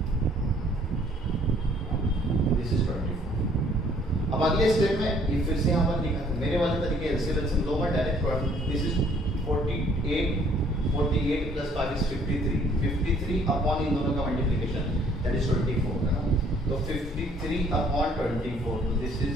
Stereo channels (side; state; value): both; normal; correlation 0.60